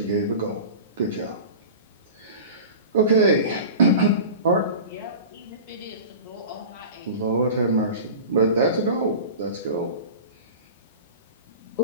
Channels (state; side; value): inverted; both; correlation -0.34